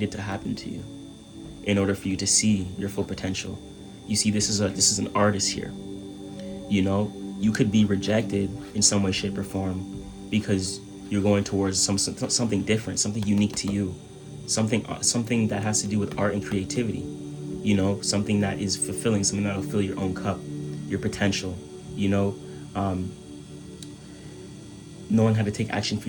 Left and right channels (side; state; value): both; identical; correlation 1.00